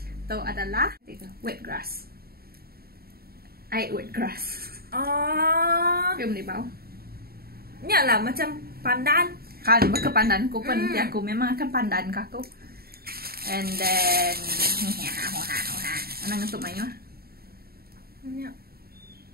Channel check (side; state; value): left; late; 0.45 ms